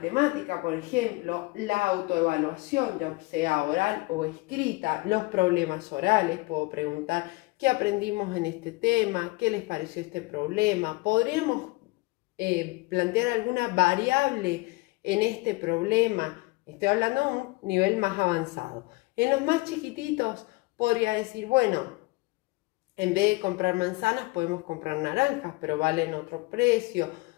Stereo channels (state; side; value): quieter; right; 23.6 dB